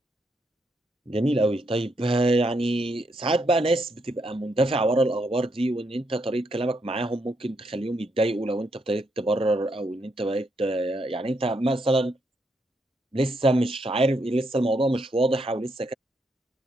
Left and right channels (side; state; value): both; normal; correlation 0.78